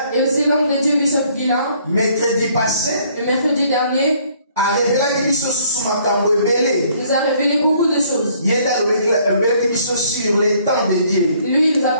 Et aussi l'homme de Dieu Bishop Guilain. Mercredi passé. Le mercredi dernier. Nous a révélé beaucoup de choses. Sur les temps de Dieu. Lui, il nous a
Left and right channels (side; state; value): both; inverted; correlation -0.62